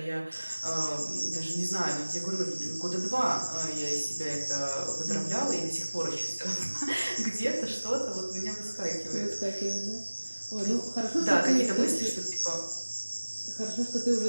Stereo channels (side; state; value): both; inverted; correlation -1.00